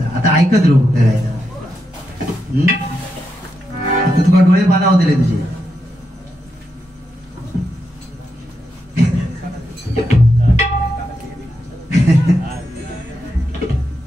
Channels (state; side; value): normal; both; correlation 0.84